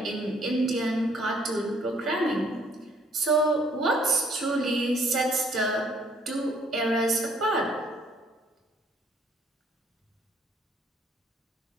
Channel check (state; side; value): normal; both; correlation 0.63